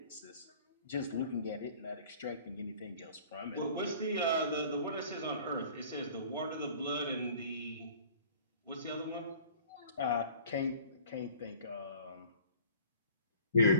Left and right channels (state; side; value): inverted; both; correlation -0.50